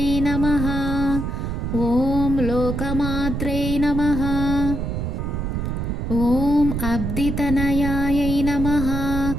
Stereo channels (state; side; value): noise; right; rumble, 2 dB below the sound